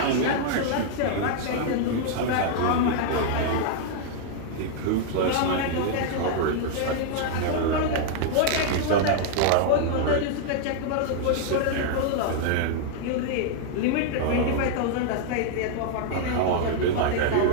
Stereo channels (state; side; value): different; both; correlation -0.01